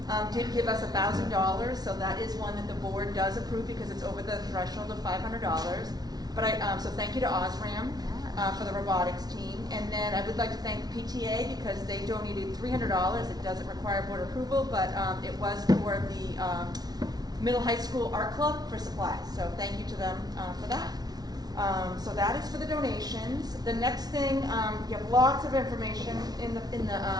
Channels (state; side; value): late; left; 0.19 ms